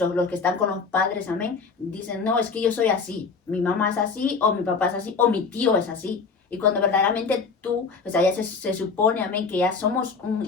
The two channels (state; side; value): quieter; right; 5.0 dB